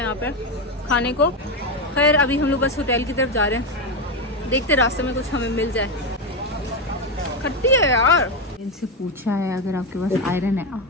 पर खाने को। खैर अभी हम लोग बस होटल की तरफ जा रहे हैं, देखते रास्ते में कुछ हमें मिल जाए। खट्टी है यार। इनसे पूछा है अगर आपके पास आयरन है।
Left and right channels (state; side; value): normal; both; correlation 0.11